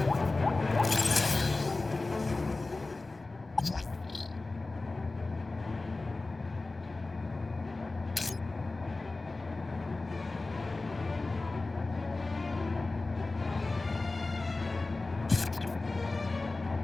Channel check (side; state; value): right; quieter; 3.3 dB